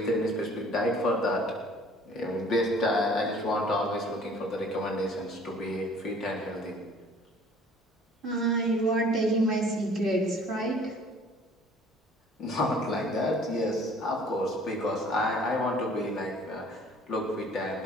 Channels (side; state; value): both; normal; correlation 0.53